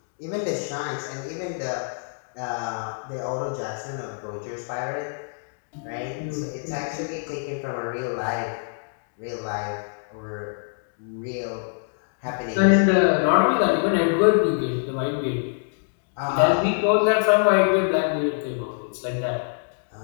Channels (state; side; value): silent; right; digital silence